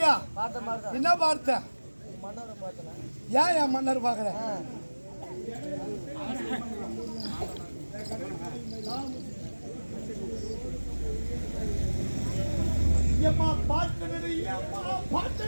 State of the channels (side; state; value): both; inverted; correlation -1.00